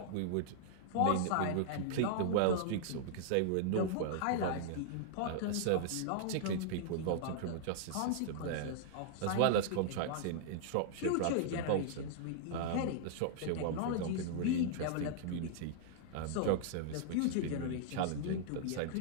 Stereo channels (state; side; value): different; both; correlation -0.01